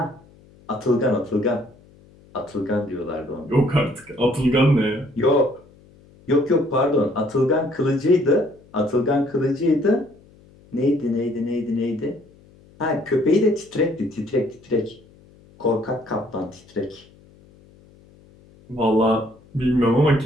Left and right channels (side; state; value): left; noise; hum, 27 dB below the sound